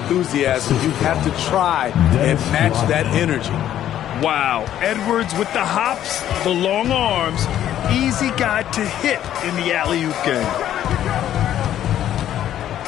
You have to try and match that energy. Wow. Edwards with the hops, the long arms. Easy guy to hit in the alley-oop game.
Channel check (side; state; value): right; quieter; 11.5 dB